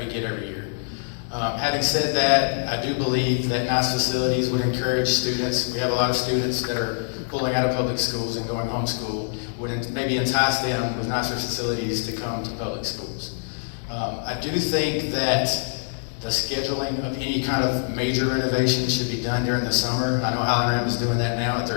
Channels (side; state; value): right; silent; digital silence